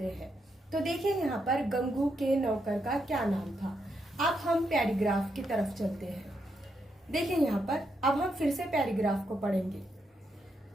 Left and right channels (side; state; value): both; normal; correlation 0.80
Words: हैं। तो देखिए यहाँ पर गंगू के नौकर का क्या नाम था। अब हम पैराग्राफ की तरफ चलते हैं। देखिए यहाँ पर अब हम फिर से पैराग्राफ को पढ़ेंगे।